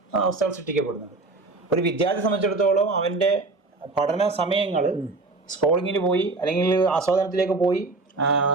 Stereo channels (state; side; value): quieter; left; 3.5 dB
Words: അവസ്ഥകൾ സൃഷ്ടിക്കപ്പെടുന്നത്. ഒരു വിദ്യാർത്ഥി സംബന്ധിച്ചിടത്തോളം അവന്റെ പഠന സമയങ്ങൾ സ്ക്രോളിങ്ങിന് പോയി അല്ലെങ്കിൽ ആസ്വാദനത്തിലേക്ക് പോയി